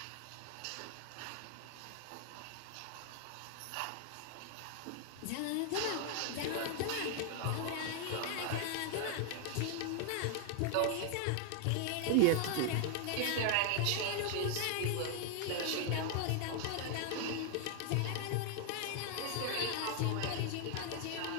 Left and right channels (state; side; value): different; both; correlation 0.00